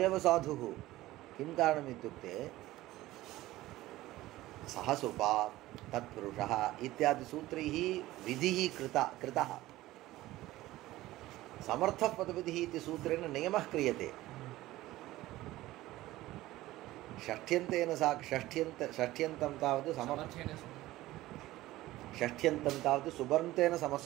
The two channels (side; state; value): left; quieter; 16.8 dB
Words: किं कारणम् इत्युक्ते सः सुपा तत्पुरुषः इत्यादि सूत्रैः विधिः कृतः। समर्थः पदविधिः इति सूत्रेण नियमः क्रियते। षष्ठ्यन्तेन षष्ठ्यन्तं तावत् सुबन्तेन